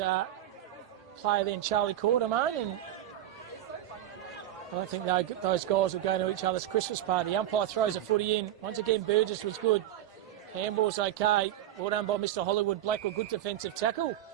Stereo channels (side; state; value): left; quieter; 12.4 dB